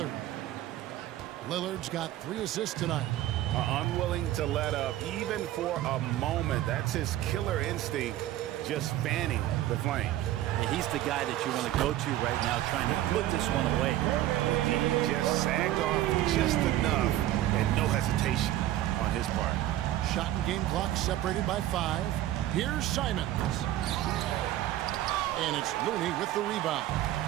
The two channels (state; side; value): quieter; left; 13.9 dB